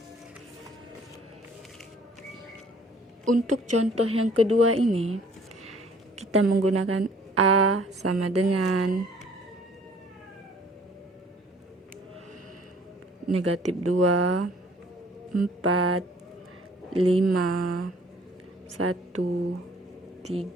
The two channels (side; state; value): both; normal; correlation 0.56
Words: Untuk contoh yang kedua ini, kita menggunakan A sama dengan negatif 2, 4, 5, 1,